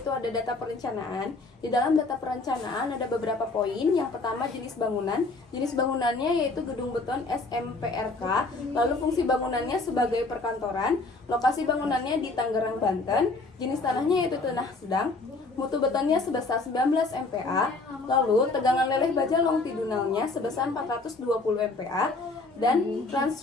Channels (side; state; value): right; quieter; 3.5 dB